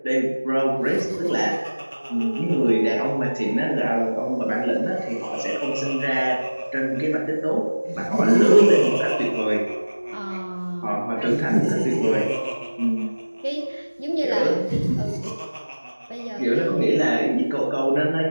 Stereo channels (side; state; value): both; inverted; correlation -1.00